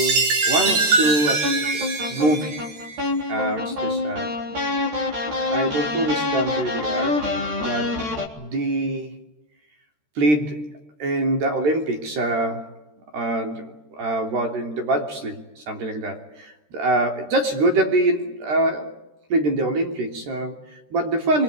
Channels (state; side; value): late; left; 13 ms